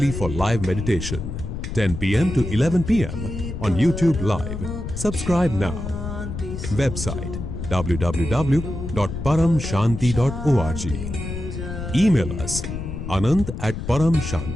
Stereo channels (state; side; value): noise; left; rumble, 7 dB below the sound